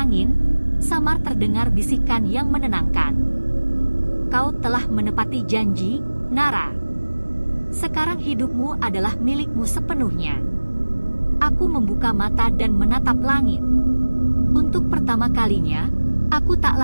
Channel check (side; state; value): both; inverted; correlation -1.00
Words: samar terdengar bisikan yang menenangkan. "Kau telah menepati janji, Nara. Sekarang hidupmu adalah milikmu sepenuhnya." Aku membuka mata dan menatap langit. Untuk pertama kalinya, aku tak